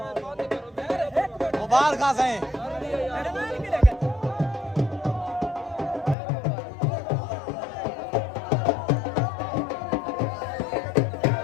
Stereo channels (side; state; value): right; drops out; at 6.2 s